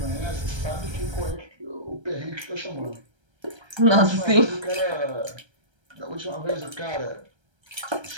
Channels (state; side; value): late; left; 1.3 ms